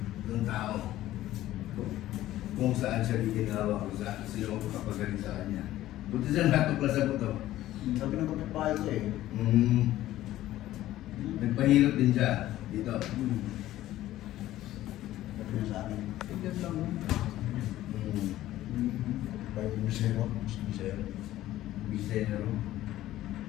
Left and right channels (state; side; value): quieter; right; 14.6 dB